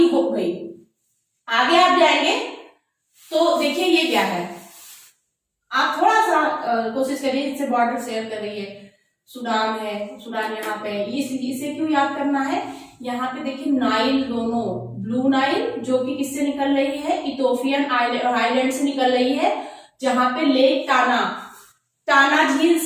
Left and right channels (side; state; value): both; identical; correlation 1.00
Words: हो गई। आगे आप जाएंगे तो देखिए ये क्या है, आप थोड़ा सा कोशिश करिए, इससे बॉर्डर शेयर कर रही है, सूडान है, सूडान यहाँ पे, इसे क्यों याद करना है, यहाँ पे देखिए नाइल दोनों, ब्लू नाइल जो कि किससे निकल रही है, इथोपियन आइलैंड से निकल रही है, जहां पे लेक टाना, टाना झील